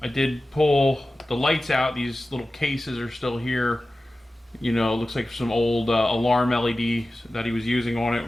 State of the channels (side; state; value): both; normal; correlation 0.95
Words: did pull the lights out. These little cases are still here. You know, it looks like some old alarm LEDs that he was using on it,